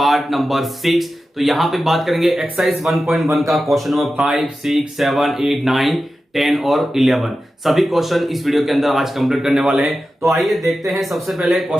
नंबर 6। तो यहाँ पे बात करेंगे एक्सरसाइज 1.1 का क्वेश्चन नंबर 5, 6, 7, 8, 9, 10 और 11। सभी क्वेश्चन इस वीडियो के अंदर आज कंप्लीट करने वाले हैं। तो आइए देखते हैं सबसे पहले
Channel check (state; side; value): normal; both; correlation 0.93